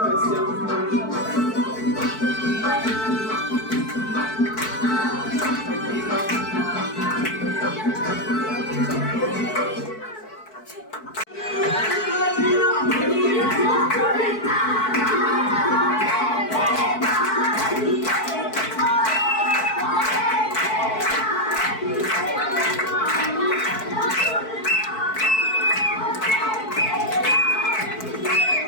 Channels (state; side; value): late; right; 4.6 ms